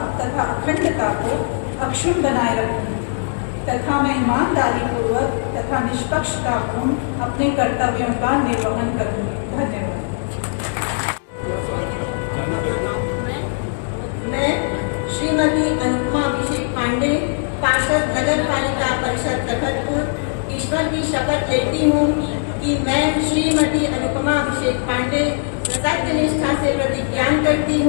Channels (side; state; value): right; silent; digital silence